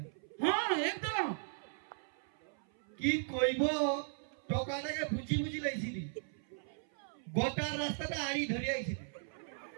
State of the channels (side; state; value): left; silent; 53 dB below the other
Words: হ্যাঁ একদম কি কইব টকাটাকে বুঝি বুঝি লাইছিলি গোটা রাস্তাটা আড়ি ধরে আইছিলি